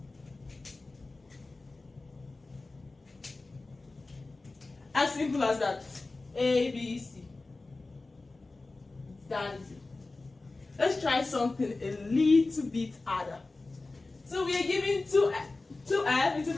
As simple as that. A, B, C. That is it. Let's try something a little bit harder. So we are given 2f into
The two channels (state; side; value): quieter; right; 3.4 dB